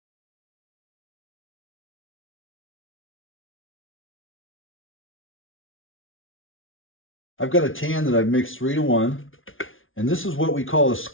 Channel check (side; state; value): right; late; 0.58 ms